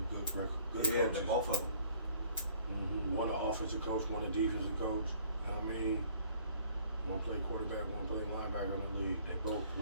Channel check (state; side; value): inverted; both; correlation -0.56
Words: good Yeah, coaches. both of them. One an offensive coach, one a defensive coach. You know what I mean? One play quarterback, one play linebacker in the league. They both